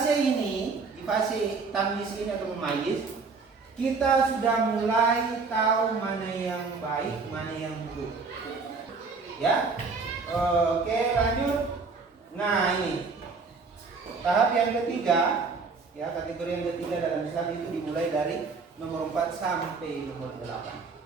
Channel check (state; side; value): quieter; left; 4.5 dB